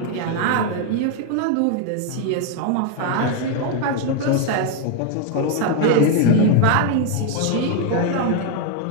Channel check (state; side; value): different; both; correlation 0.01